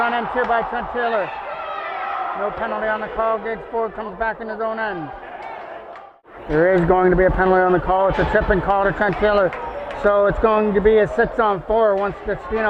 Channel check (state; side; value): identical; both; correlation 1.00